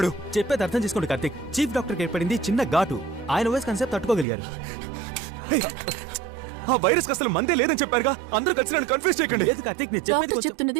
చెప్పేది అర్థం చేసుకోండి కార్తీక్. చీఫ్ డాక్టర్కి ఏర్పడింది చిన్న ఘాటు. ఆయన వయసు కన్సెప్ట్ తట్టుకోగలిగారు. ఆ వైరస్ అసలు మందే లేదని చెప్పారుగా. అందరూ కలిసి నన్ను కన్ఫ్యూజ్ చేయకండి. లేదు కార్తీక్, నేను చెప్పేది డాక్టర్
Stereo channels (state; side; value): drops out; left; at 4.2 s